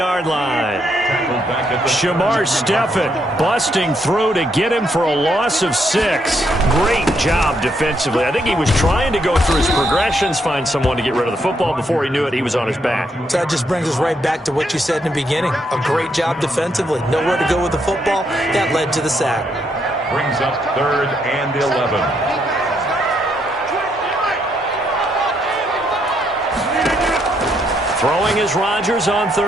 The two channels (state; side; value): normal; both; correlation 0.75